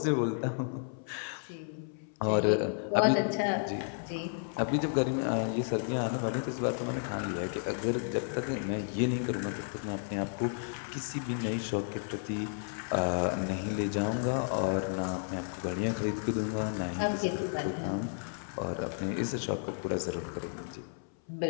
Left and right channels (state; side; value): silent; right; 56 dB below the other